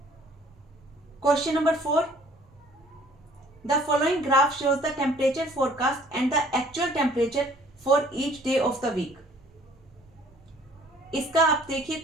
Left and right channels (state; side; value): normal; both; correlation 0.57